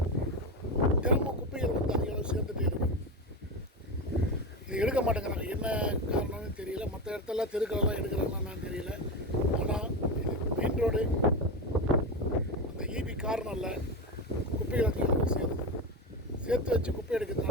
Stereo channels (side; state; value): both; normal; correlation 0.18